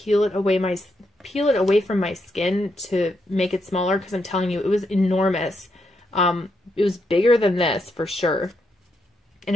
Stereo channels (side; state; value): both; normal; correlation 0.81